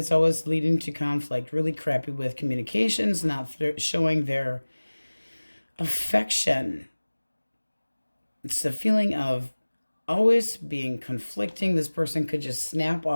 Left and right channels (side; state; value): both; inverted; correlation -1.00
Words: always leading to conflict. Really crappy with communications. Not showing their affection. It's the feeling of always being conflicting. This person could just snap